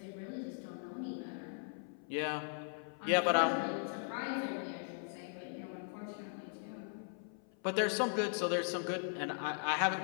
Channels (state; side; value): silent; right; 52 dB below the other